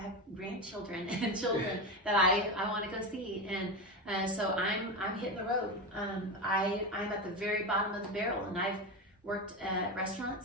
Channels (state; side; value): normal; both; correlation 0.18